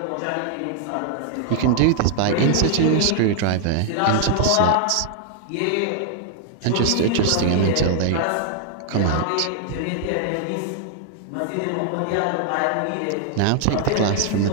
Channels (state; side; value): different; both; correlation 0.00